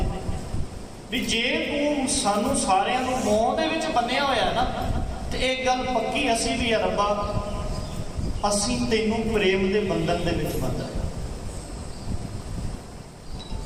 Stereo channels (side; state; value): both; identical; correlation 1.00